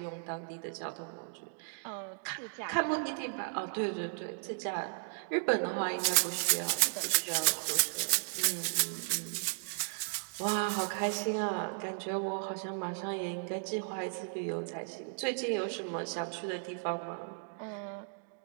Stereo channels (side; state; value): left; silent; digital silence